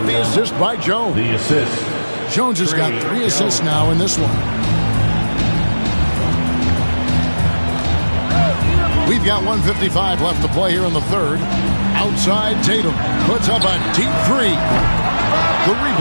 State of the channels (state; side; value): inverted; both; correlation -1.00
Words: the assist by Jones. The assist. Jones has got 3 assists now in this one. We've got 1:55 left to play here in the third. Outside, Tatum puts up a deep three. The